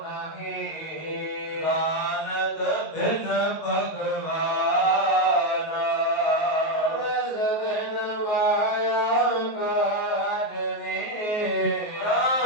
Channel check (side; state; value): right; late; 19 ms